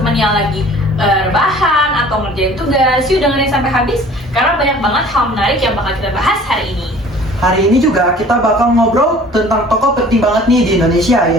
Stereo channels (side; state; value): both; normal; correlation 0.49